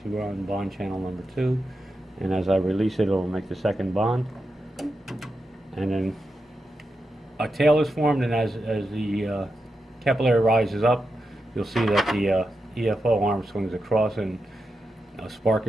see we're on bond channel number 2, and as I release it, it'll make the second bond. And then a tail is formed, and as the capillary rises up, you'll see that the EFO arm swings across and a spark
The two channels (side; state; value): both; normal; correlation 0.88